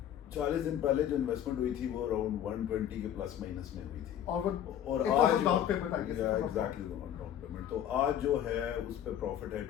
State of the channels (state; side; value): quieter; right; 10.4 dB